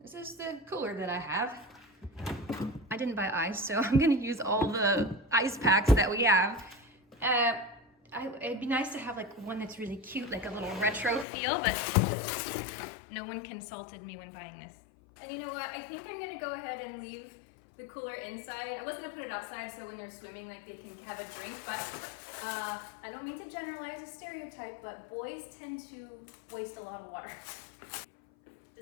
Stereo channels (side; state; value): right; drops out; at 11.2 s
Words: This is the cooler that I have. I didn't buy ice, so I'm gonna use all the ice packs that we have. It'd be nice to have like one that's really cute, like a little retro feel, but no one consulted me when buying this. And you know what? I think I'm gonna go ahead and leave the cooler inside. I was gonna put it outside so when they're swimming, like they can have a drink, but I don't mean to generalize a stereotype, but boys tend to waste a lot of water.